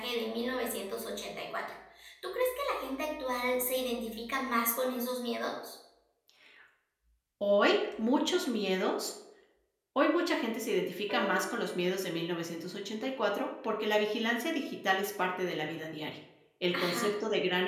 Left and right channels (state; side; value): identical; both; correlation 1.00